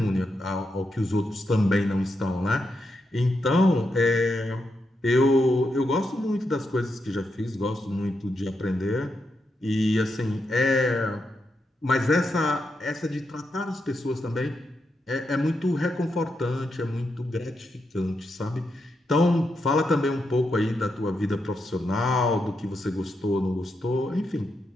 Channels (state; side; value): normal; both; correlation 0.84